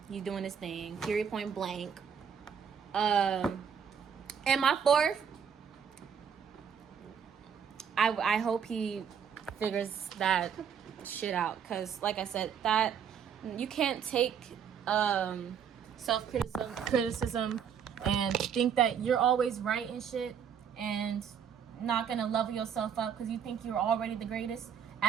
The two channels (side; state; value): left; quieter; 7.6 dB